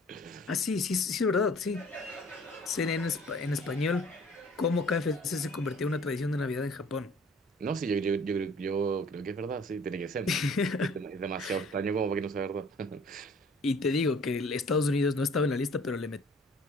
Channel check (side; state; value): both; normal; correlation 0.52